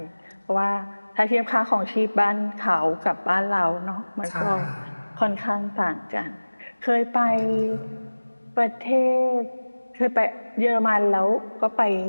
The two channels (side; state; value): both; inverted; correlation -1.00